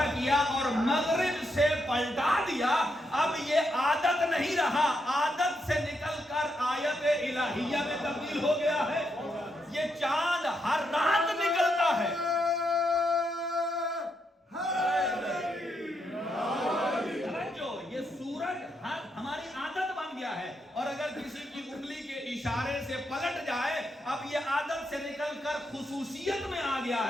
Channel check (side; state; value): both; normal; correlation 0.80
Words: کیا اور مغرب سے پلٹا دیا، اب یہ عادت نہیں رہا، عادت سے نکل کر آیت الہیہ میں تبدیل ہو گیا ہے. یہ چاند ہر رات نکلتا ہے، یہ سورج ہماری عادت بن گیا ہے، اور اگر کسی کی انگلی کے اشارے سے پلٹ جائے، اب یہ عادت سے نکل کر خصوصیت میں آ گیا